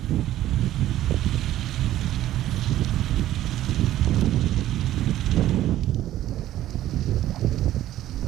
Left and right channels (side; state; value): left; quieter; 13.5 dB